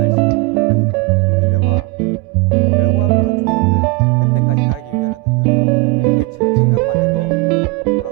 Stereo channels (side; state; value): left; quieter; 23.0 dB